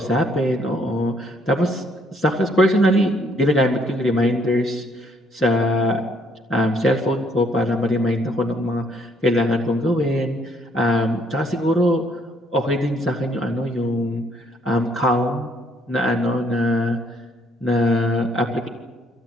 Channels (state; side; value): normal; both; correlation 0.67